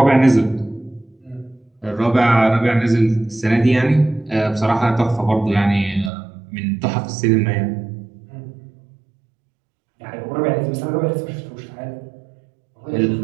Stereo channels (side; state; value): left; drops out; at 6.1 s